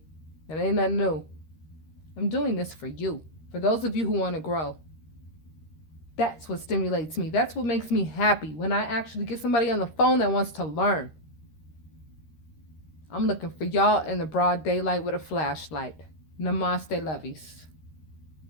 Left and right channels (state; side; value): late; right; 13 ms